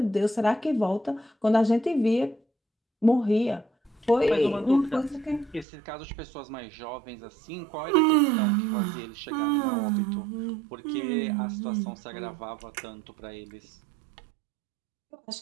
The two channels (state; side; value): drops out; left; at 5.7 s